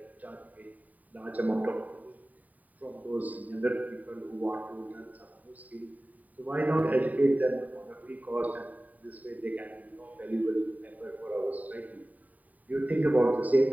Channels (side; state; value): left; late; 0.075 ms